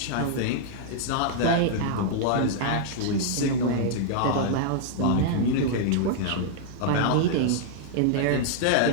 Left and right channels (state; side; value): different; both; correlation -0.01